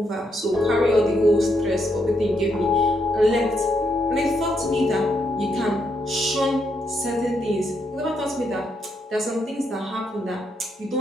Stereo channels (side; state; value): both; normal; correlation 0.78